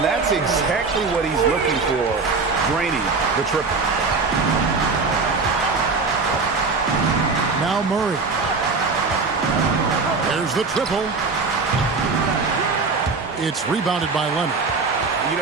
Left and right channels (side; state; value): left; quieter; 4.3 dB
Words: that's exactly what he's looking for, draining the triple. Now Murray. There's the triple. It's rebounded by Leonard. You